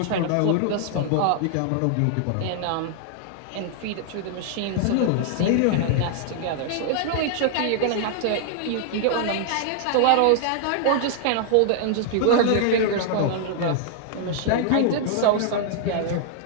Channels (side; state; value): both; different; correlation -0.01